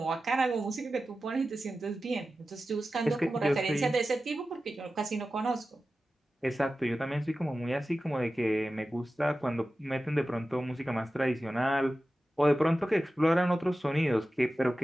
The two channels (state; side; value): normal; both; correlation 0.94